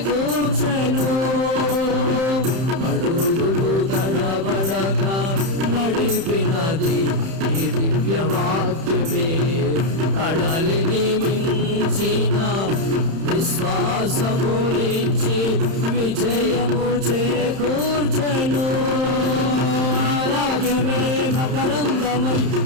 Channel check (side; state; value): left; late; 31 ms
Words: అడుగులు తడబడక నడిపినది ఈ దివ్యవాక్యమే. కడలిని మించిన మకరందమై